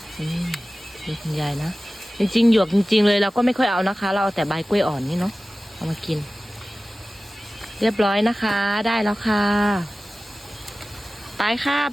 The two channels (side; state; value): both; normal; correlation 0.96